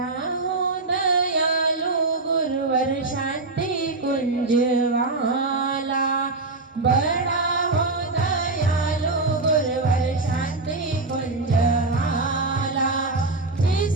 हो दयालु गुरुवर शांति कुंज वाला, बड़ा हो दयालु गुरुवर शांति कुंज वाला,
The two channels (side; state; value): left; quieter; 3.3 dB